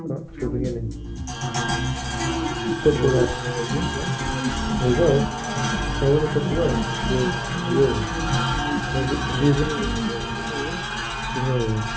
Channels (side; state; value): both; identical; correlation 1.00